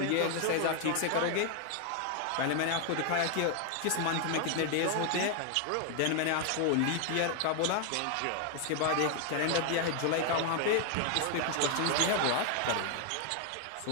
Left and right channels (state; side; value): different; both; correlation 0.00